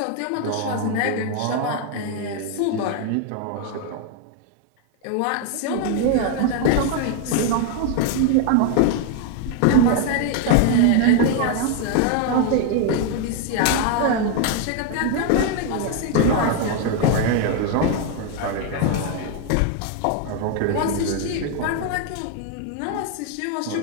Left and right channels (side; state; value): both; different; correlation 0.00